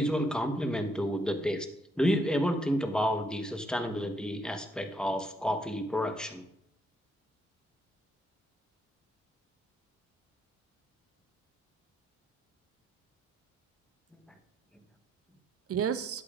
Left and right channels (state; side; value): normal; both; correlation 0.74